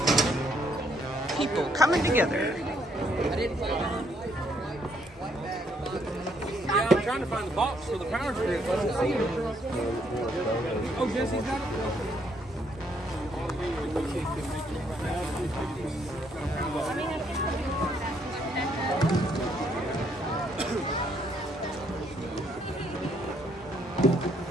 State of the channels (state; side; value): normal; both; correlation 0.70